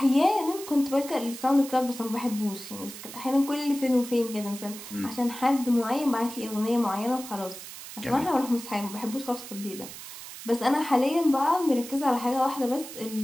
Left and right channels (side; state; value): right; noise; hiss, 12 dB below the sound